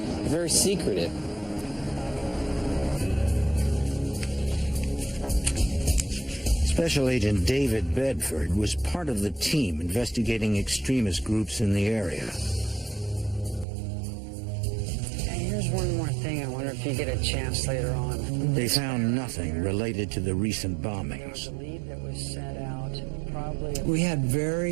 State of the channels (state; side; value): drops out; left; at 13.7 s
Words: They're very secretive. Special Agent David Bedford was part of the team investigating extremist groups in the area. Here's one more thing. I wonder if you get a chance later on. They found nothing related to the recent bombings. We had